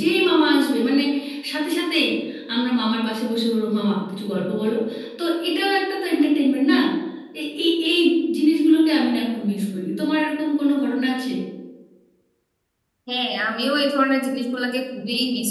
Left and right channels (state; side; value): identical; both; correlation 1.00